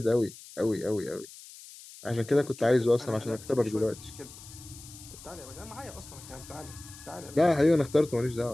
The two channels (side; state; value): left; noise; hiss, 17 dB below the sound